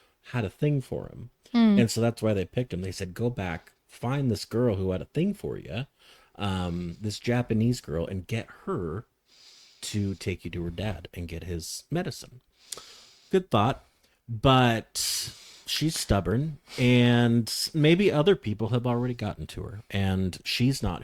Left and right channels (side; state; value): both; identical; correlation 1.00